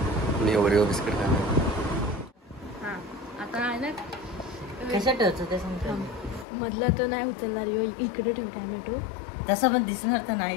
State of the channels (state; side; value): drops out; right; at 6.5 s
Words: मी ओरिओ बिस्किट खाणार. आता आहे ना कसं ठेवतो ते सांगतो. मधला तो नाही उचलणार. इकडे ठेव टॅमॅटो. तसं पण दिसणार तर